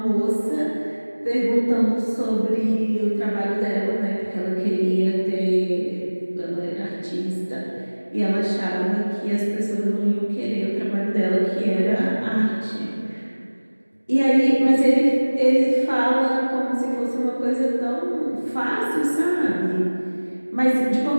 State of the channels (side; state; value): both; inverted; correlation -1.00